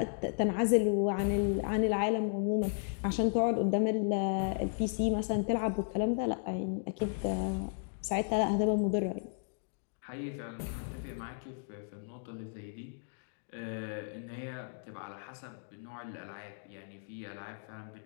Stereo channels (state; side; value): silent; right; digital silence